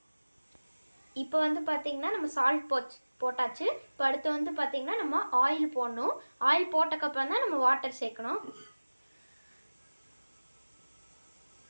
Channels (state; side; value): inverted; both; correlation -1.00